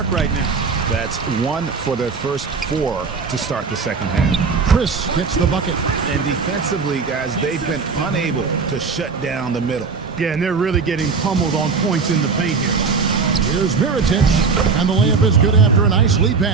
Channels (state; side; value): quieter; left; 4.9 dB